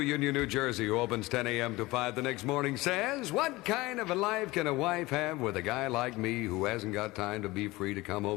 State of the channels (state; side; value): quieter; right; 20.4 dB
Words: Union, New Jersey, who opens 10 a.m. to 5 the next morning, says, what kind of a life can a wife have with a guy like me who hasn't got time to be free to come